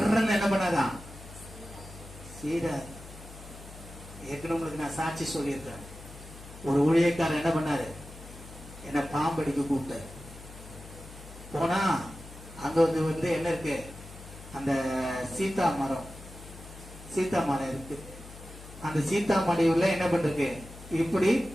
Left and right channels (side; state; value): left; noise; hum, 16 dB below the sound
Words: என்ன பண்ணாதா? சீரா ஏற்கனவே உங்களுக்கு நான் சாட்சி சொல்லியிருக்கேன். ஒரு ஊழியக்காரர் என்ன பண்ணாரு? என்ன பாம்படிக்க கூப்பிட்டாரு. போனா அங்க வந்து என்ன இருக்கு? அந்த சீதா மரம் இருக்கு. அந்த சீதா மடிவுல என்ன பண்றது? இப்படி